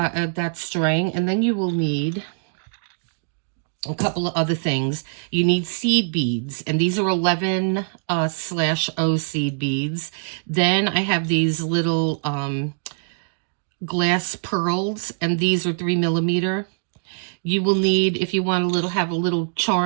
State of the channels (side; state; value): left; silent; digital silence